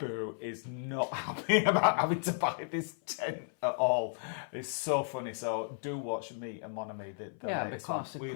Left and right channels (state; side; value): silent; right; 55 dB below the other